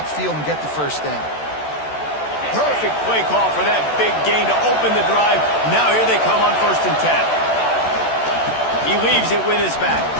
and get the first down. Perfect play call for that big gain to open the drive. Now here they come on 1st and 10. He leaves it with his back.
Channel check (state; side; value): late; right; 14 ms